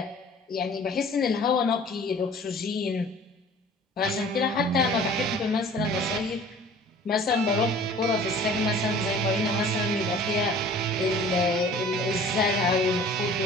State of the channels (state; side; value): normal; both; correlation 0.47